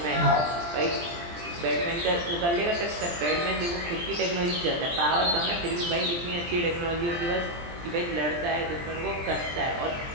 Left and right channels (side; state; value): left; late; 23 ms